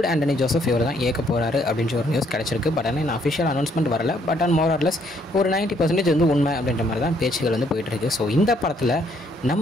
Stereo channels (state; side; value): normal; both; correlation 0.68